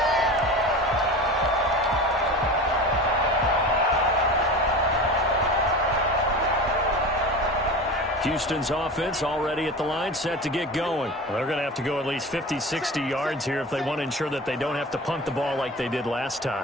Houston's offense already at the line, set to get going. Well, they're going to have to go at least 50, 60 yards here if they want to ensure that they don't have to punt the ball like they did last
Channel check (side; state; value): both; normal; correlation 0.32